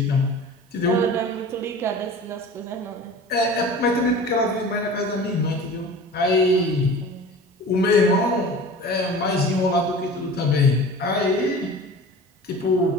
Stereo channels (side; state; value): both; normal; correlation 0.39